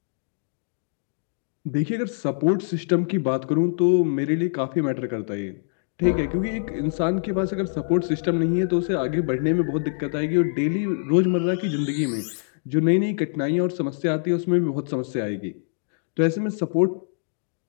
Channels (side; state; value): right; silent; digital silence